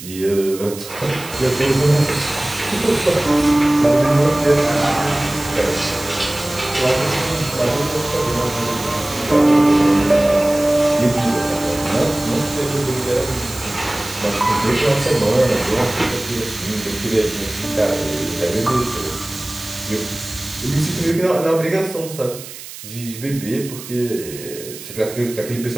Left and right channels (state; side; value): noise; right; hiss, 14 dB below the sound